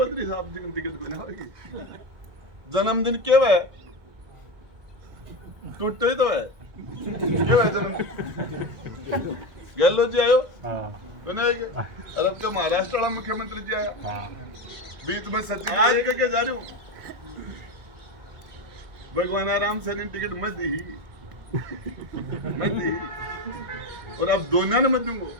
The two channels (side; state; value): left; late; 1.7 ms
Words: साहब जी टिकट बना होगी, जन्मदिन क्यों है, टूटे तो है क्यों है जन्मदिन। गहलोत जी आयो बनाएंगे, अरब का महाराष्ट्र वाला मुख्यमंत्री जी आया, बीच में सचिव आज करके जा रही हूँ, भगवान आराम से टिकट मत दी और अब दोनों ने मत दूंगो।